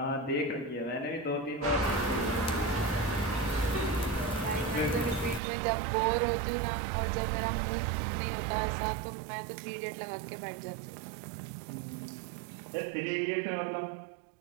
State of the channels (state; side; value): drops out; left; at 5.4 s